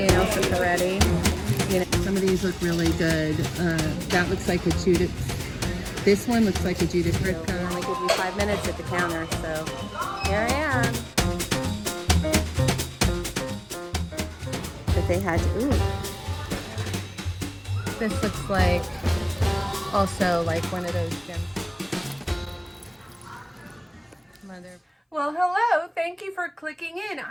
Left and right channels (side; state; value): both; identical; correlation 1.00